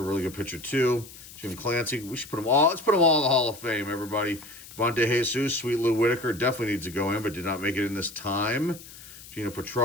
a really good pitcher too. Jim Clancy, we should put them all. Let's put them all in the Hall of Fame, everybody. Von De Jesus, Sweet Lou Whitaker definitely needs to go in, but did not make it in this time. Gino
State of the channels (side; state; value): left; noise; hiss, 17 dB below the sound